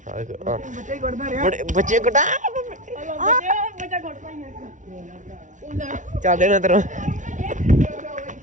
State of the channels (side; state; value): left; late; 0.37 ms